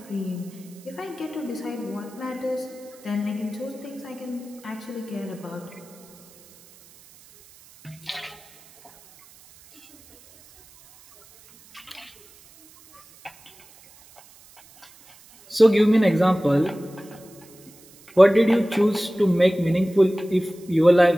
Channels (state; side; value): noise; right; hiss, 25 dB below the sound